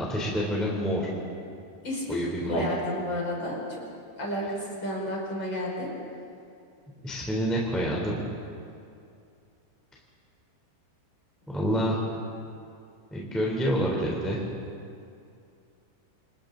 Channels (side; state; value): both; normal; correlation 0.36